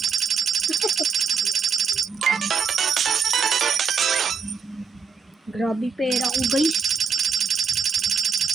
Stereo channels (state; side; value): quieter; left; 6.1 dB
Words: Grabe pera ko guys.